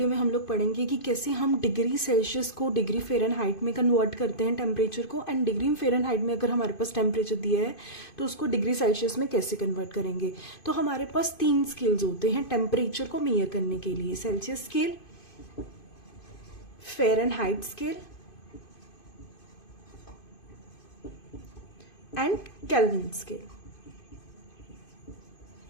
में हम लोग पढ़ेंगे कि कैसे हम डिग्री सेल्सियस को डिग्री फ़ारेनहाइट में कन्वर्ट करते हैं टेम्परेचर को, एंड डिग्री फ़ारेनहाइट में अगर हमारे पास टेम्परेचर दिया है तो उसको डिग्री सेल्सियस में कैसे कन्वर्ट करेंगे। तो हमारे पास 3 स्केल्स होते हैं टेम्परेचर को मेजर करने के लिए: Celsius scale, Fahrenheit scale and kelvin scale.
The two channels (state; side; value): late; right; 2.5 ms